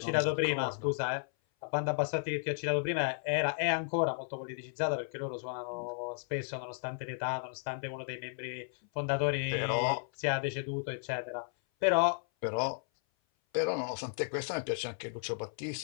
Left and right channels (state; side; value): silent; right; 55 dB below the other